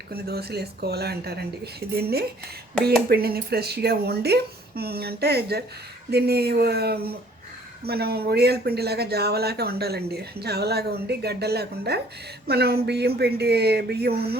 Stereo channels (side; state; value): both; normal; correlation 0.57